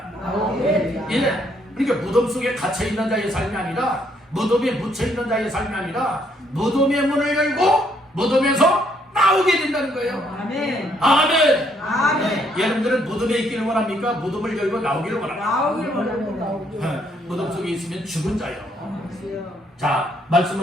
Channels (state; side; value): normal; both; correlation 0.70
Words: 예, 그러니까 무덤 속에 갇혀 있는 자의 삶이 아니라, 무덤에 묻혀 있는 자의 삶이 아니라, 무덤의 문을 열고 무덤에서 나오게 된다는 거예요. 아멘. 아멘. 아멘. 여러분들은 무덤에 있기를 원합니까? 무덤을 열고 나오기를 원합니까? 나오길 원합니다. 무덤 속에 있으면 죽은 자요. 자,